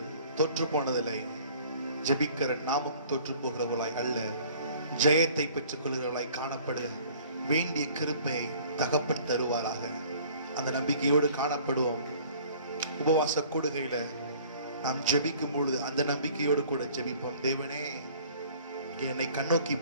தோற்று போனதில்லை, ஜெபிக்கிற நாமும் தோற்று போகிறவர்களாய் அல்ல, ஜெயத்தை பெற்றுக் கொள்கிறவர்களாய் காணப்பட வேண்டிய கிருபையை தகப்பன் தருவாராக. அந்த நம்பிக்கையோடு காணப்படுவோம். உபவாச கூடுகையில நாம் ஜெபிக்கும் பொழுது அந்த நம்பிக்கையோடு கூட ஜெபிப்போம். தேவனே என்னை கண்ணோக்கி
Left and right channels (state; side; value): inverted; both; correlation -0.52